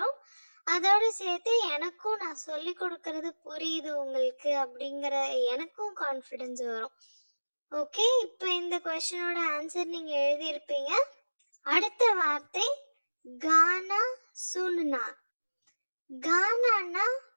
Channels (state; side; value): inverted; both; correlation -1.00